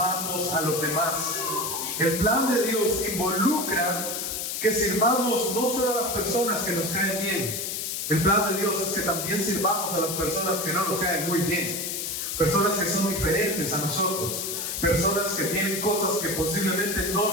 a los demás. El plan de Dios involucra que sirvamos no solo a las personas que nos caen bien. El plan de Dios es que también sirvamos a las personas que no nos caen muy bien, personas que son diferentes a nosotros, personas que tienen cosas que posiblemente no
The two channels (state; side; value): noise; left; hiss, 3 dB below the sound